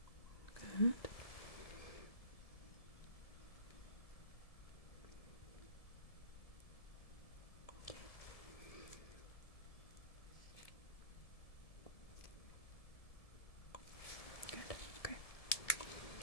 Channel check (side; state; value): right; late; 1.7 ms